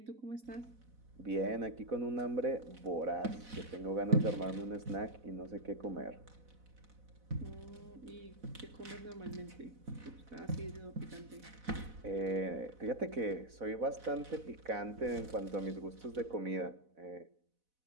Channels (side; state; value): left; late; 4.0 ms